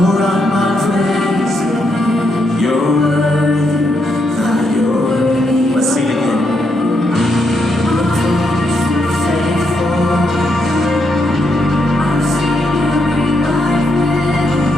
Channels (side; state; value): both; normal; correlation 0.79